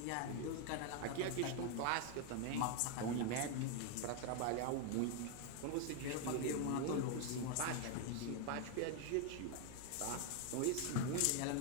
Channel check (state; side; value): different; both; correlation 0.01